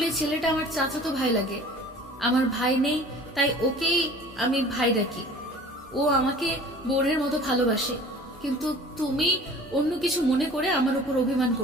ছেলেটা আমার চাচাতো ভাই লাগে। আমার ভাই নেই, তাই ওকেই আমি ভাই ডাকি। ও আমাকে বোনের মতো ভালোবাসে, কিন্তু তুমি অন্য কিছু মনে করে আমার উপর অভিমান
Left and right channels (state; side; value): normal; both; correlation 0.45